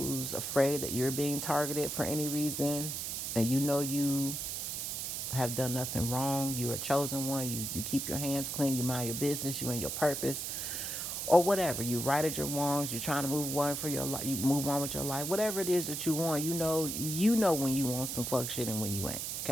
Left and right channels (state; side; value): noise; right; hiss, 3 dB below the sound